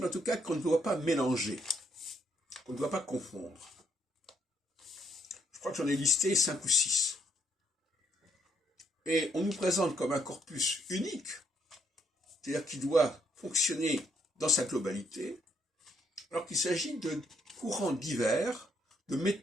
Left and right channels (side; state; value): both; normal; correlation 0.72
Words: en tout cas qu'on ne doit pas mélanger, qu'on ne doit pas confondre. Je crois que j'en ai listé 5 ou 6. Et on nous présente comme un corpus unique, c'est-à-dire qui doit fonctionner dans sa globalité, alors qu'il s'agit de courants divers, de